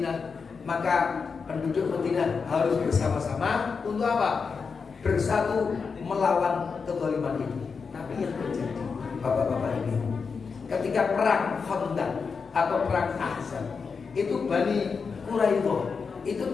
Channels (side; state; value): right; quieter; 5.3 dB